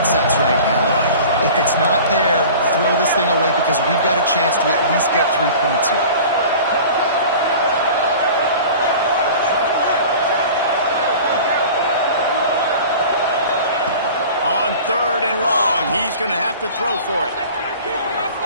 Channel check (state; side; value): inverted; both; correlation -0.41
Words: right now. If it's not there, throw this thing away because we've got a chance to at least get 3 points here. On 3rd and long, he's going to have to throw for it.